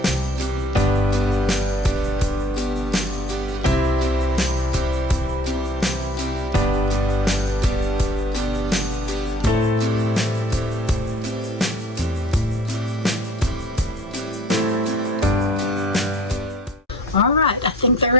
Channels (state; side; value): normal; both; correlation 0.54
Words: All right, I think they're